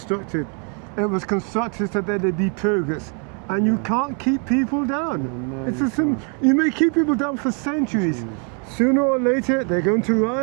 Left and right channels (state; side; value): quieter; left; 38.9 dB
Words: it was constructed so that there'd be progress. And you can't keep people down. It's a you may keep people down for centuries. Sooner or later, they're going to